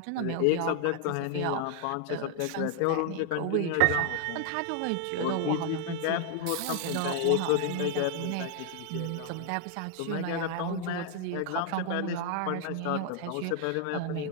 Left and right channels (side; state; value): both; different; correlation 0.00